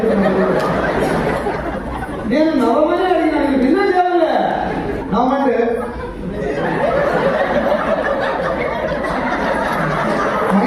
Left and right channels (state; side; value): identical; both; correlation 1.00